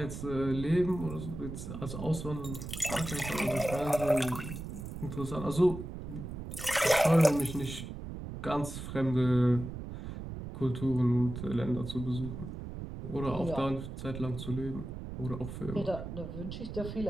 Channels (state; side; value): noise; right; rumble, 8 dB below the sound